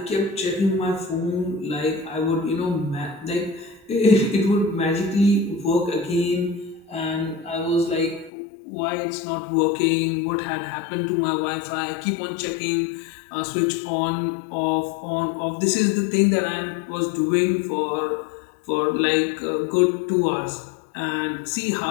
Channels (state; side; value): drops out; right; at 8.3 s